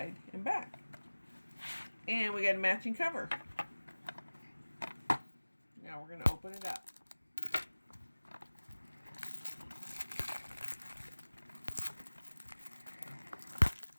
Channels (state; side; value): inverted; both; correlation -1.00